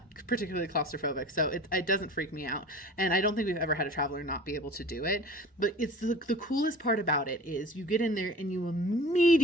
particularly claustrophobic, so it doesn't freak me out. And I don't think we've ever had a traveler not be able to do it. But it's the coolest part about it is you get in there and you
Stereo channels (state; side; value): normal; both; correlation 0.40